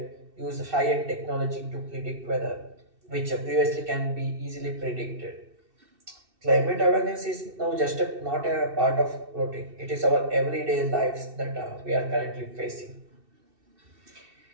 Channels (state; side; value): late; left; 2.7 ms